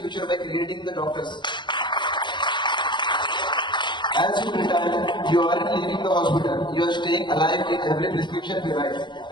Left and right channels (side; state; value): right; late; 0.22 ms